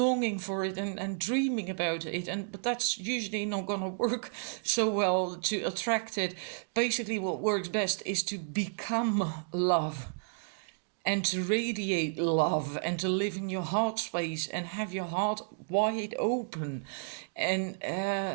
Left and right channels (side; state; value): left; silent; digital silence